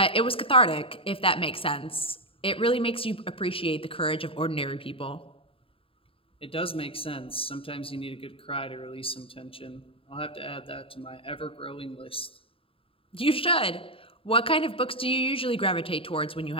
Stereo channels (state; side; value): late; right; 0.27 ms